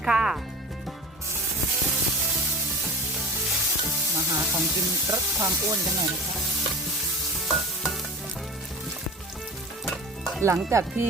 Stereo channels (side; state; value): both; normal; correlation 0.35